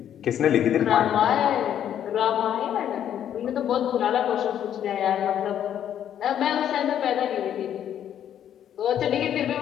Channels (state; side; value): quieter; right; 10.0 dB